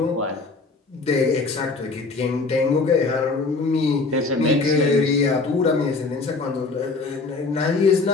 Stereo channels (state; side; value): quieter; right; 3.9 dB